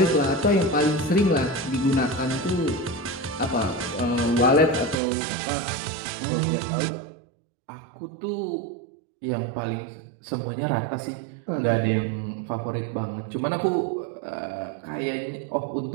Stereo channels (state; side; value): drops out; left; at 5.0 s